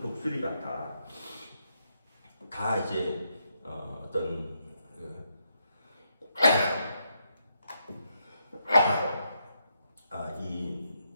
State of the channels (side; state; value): both; inverted; correlation -0.80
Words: 같아. 다 이제 이